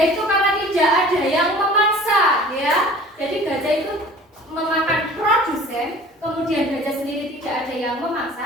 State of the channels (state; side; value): normal; both; correlation 0.45